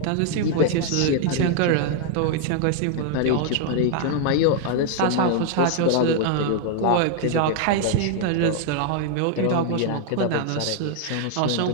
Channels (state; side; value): different; both; correlation 0.00